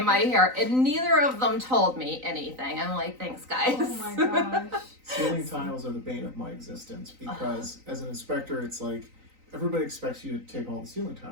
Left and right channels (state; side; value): late; left; 3.9 ms